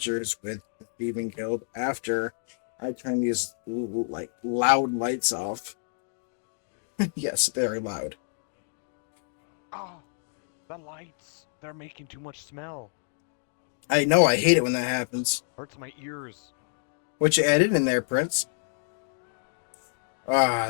with the Thieving Guild after I turn these like loud lights off. Yes, very loud. Oh, the lights! They're making too much smell. I know I hate it when that happens. Hurts my ears. What you added in there, Prince? Ah,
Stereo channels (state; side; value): silent; right; digital silence